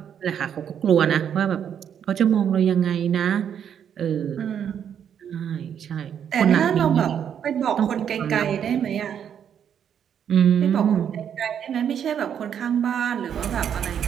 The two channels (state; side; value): quieter; left; 8.6 dB